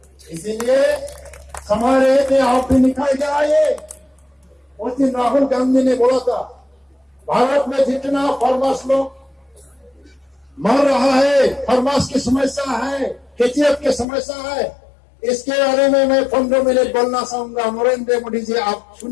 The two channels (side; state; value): right; drops out; at 14.1 s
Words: इसीलिए हमारे में आप भी निकाल के आए। उस दिन राहुल गांधी ने बोला था भारत में जितना फार्मर्स लोग मर रहा है, फार्मर्स की समस्या है, केचीएफ की समस्या है, इसके बारे में मैं 15 मिनट बोलना चाहूंगा। नरेंद्र मोदी जी आप